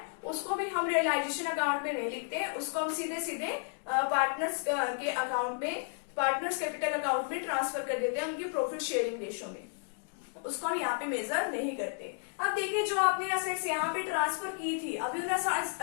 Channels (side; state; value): right; silent; 56 dB below the other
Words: उसको भी हम रियलाइजेशन अकाउंट में नहीं लिखते। उसको हम सीधे सीधे पार्टनर्स के अकाउंट में, पार्टनर्स कैपिटल अकाउंट में ट्रांसफर कर देते हैं उनकी प्रॉफिट शेयरिंग रेशो में। उसको हम यहाँ पे मेजर नहीं करते। अब देखिए, जो आपने असेट्स यहाँ पे ट्रांसफर की थी, अभी उन